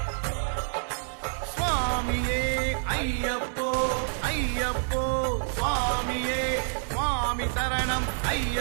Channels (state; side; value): silent; left; 60 dB below the other